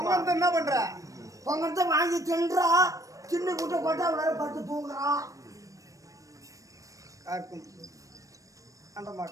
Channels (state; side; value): late; left; 0.16 ms